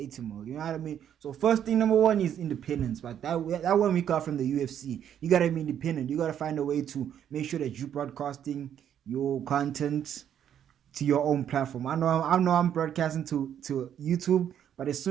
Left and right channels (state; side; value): quieter; left; 9.6 dB